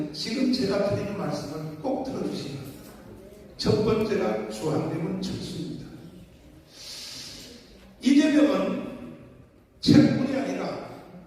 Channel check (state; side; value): identical; both; correlation 1.00